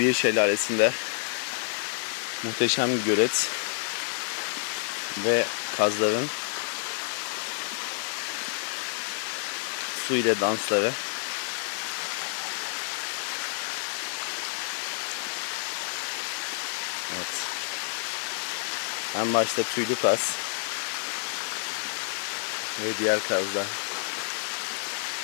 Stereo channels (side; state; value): right; silent; 59 dB below the other